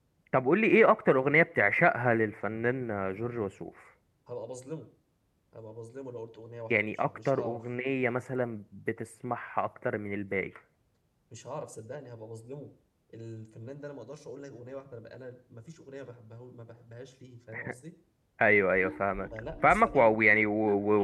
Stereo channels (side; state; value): both; identical; correlation 1.00